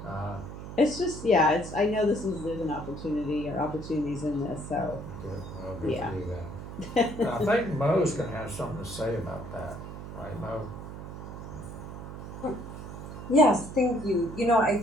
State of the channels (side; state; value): right; noise; hum, 10 dB below the sound